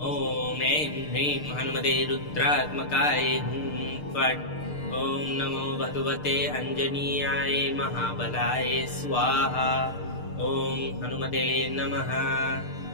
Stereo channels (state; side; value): late; right; 6.6 ms